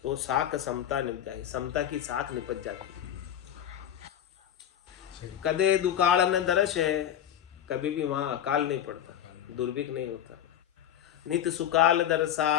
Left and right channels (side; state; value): right; quieter; 10.4 dB